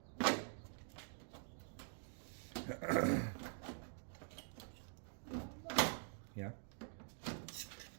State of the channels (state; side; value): silent; left; digital silence